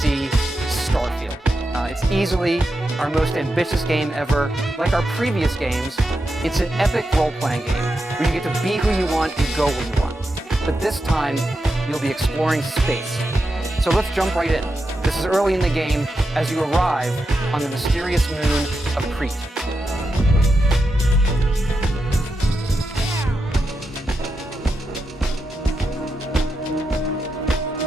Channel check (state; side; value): normal; both; correlation 0.87